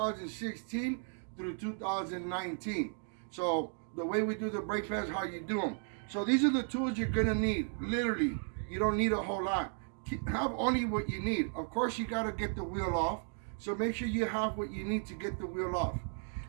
through 2019. So the way we do the brake pads, how you do them. So these are the tools you're going to need. Literally, you don't need a whole lot. Have only what you need. Of course, you got to get the wheel off. So make sure you have what you need to get the wheel off.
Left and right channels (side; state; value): left; silent; 54 dB below the other